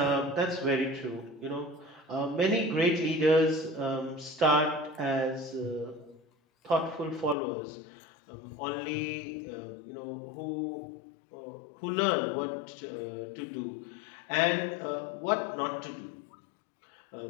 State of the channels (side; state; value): right; drops out; at 7.4 s